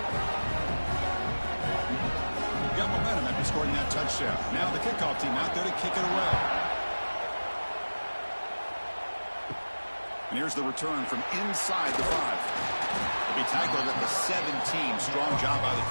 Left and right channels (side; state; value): both; inverted; correlation -1.00